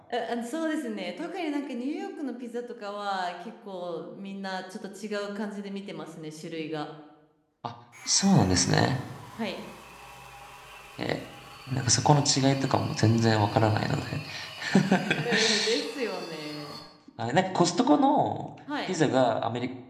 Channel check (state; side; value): identical; both; correlation 1.00